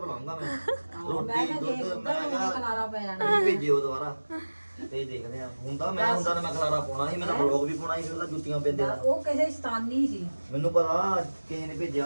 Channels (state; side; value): inverted; both; correlation -1.00